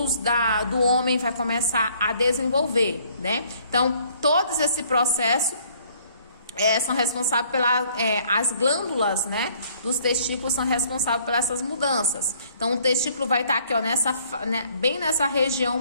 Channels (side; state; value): both; inverted; correlation -0.61